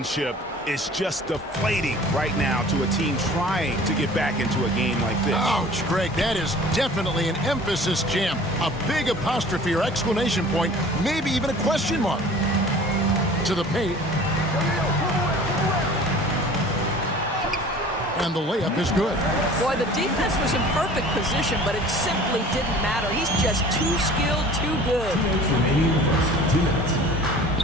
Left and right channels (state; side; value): normal; both; correlation 0.45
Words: is just deflating right now to a team trying to get back into a game like this. Ouch, Greg, that is definitely an emphasis jam. A big apostrophe or exclamation point, maybe even a question mark. To the paint. And the layup is good. Boy, the defense was in perfect position, but it simply didn't matter. He's just too skilled, too good. 2 minutes remaining in the first. 2 minutes.